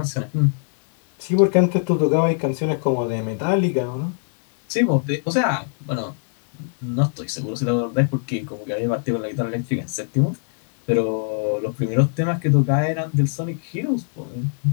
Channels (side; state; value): right; silent; 64 dB below the other